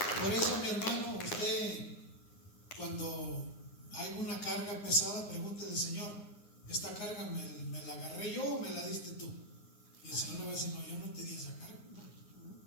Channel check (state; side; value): late; right; 9.7 ms